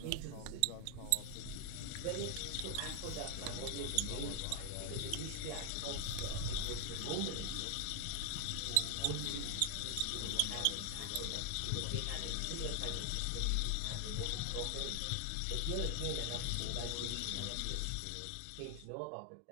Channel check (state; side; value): different; both; correlation 0.00